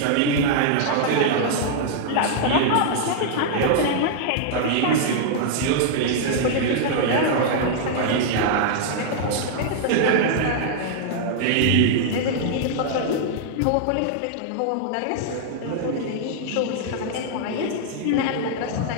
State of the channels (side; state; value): both; different; correlation -0.01